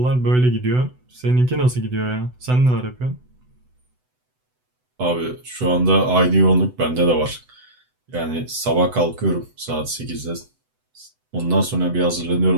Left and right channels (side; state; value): left; late; 8.0 ms